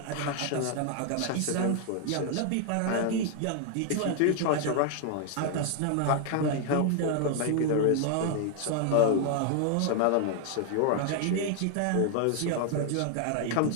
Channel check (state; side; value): different; both; correlation 0.00